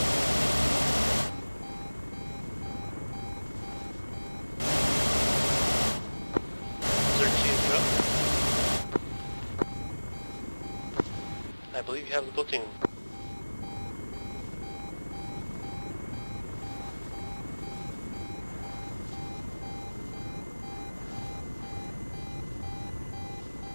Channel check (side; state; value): both; inverted; correlation -1.00